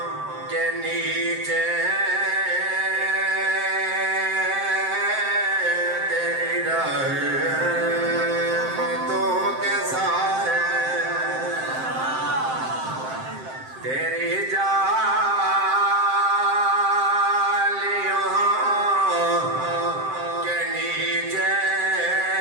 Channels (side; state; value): left; late; 7.7 ms